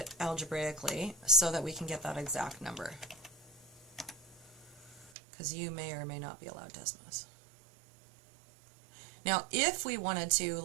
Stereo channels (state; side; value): drops out; left; at 5.2 s